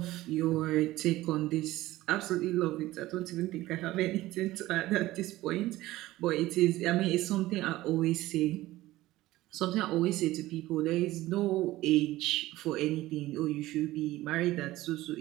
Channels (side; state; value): left; quieter; 16.9 dB